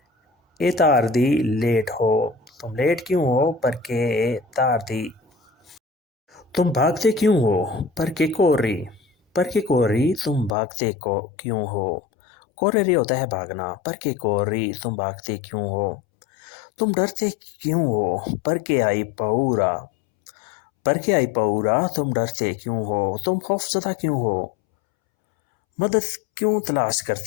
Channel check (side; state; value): right; drops out; at 10.6 s